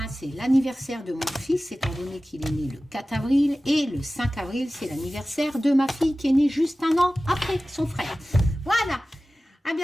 c'est l'anniversaire de mon fils, étant donné qu'il est né le 4 avril. Et le 5 avril, c'est l'anniversaire de ma fille qui est née juste un an après son frère. Voilà. À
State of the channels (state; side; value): normal; both; correlation 0.96